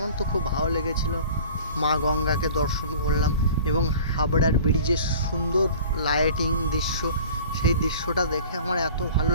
তো খুব ভালো লেগেছিল। মা গঙ্গাকে দর্শন করলাম এবং হাবড়ার ব্রিজের সুন্দর লাইটিং দৃশ্য, সেই দৃশ্যটা দেখে আমার এত ভালো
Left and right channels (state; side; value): inverted; both; correlation -0.45